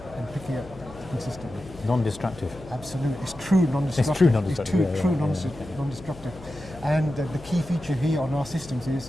and picking it consistently. Non-destructive. Absolutely. It's true non-destructive. It's true non-destructive. It's true non-destructive. And the key feature here on our systems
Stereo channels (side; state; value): left; noise; hum, 18 dB below the sound